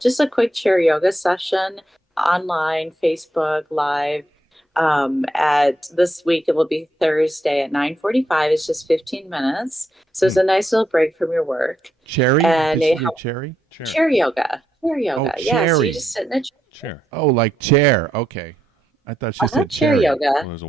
a quick chair yoga session online, Facebook Live. At this week, it will be Thursday at 9:45. It's just 15 minutes. So it's a nice little break from your work. Cherry? And Did it she do helps- cherry? Chair yoga. Chair yoga. Oh, Yeah, so cherry. you just sit in a chair. Oh, like chair. Okay. I thought she said chair cherry. yoga. Well, there's a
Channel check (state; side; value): normal; both; correlation 0.80